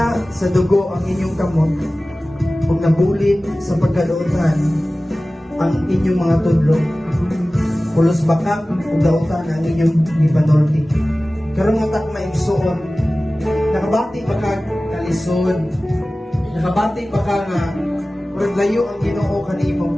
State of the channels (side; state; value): both; normal; correlation 0.97